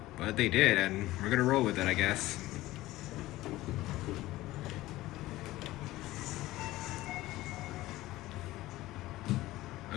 but they did, and we're gonna roll with it, I guess.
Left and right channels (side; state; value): right; quieter; 17.2 dB